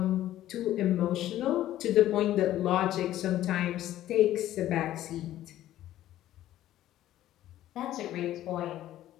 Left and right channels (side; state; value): right; quieter; 13.4 dB